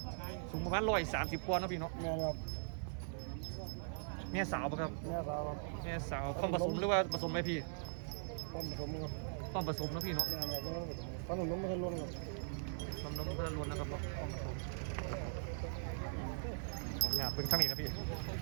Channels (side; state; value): left; silent; digital silence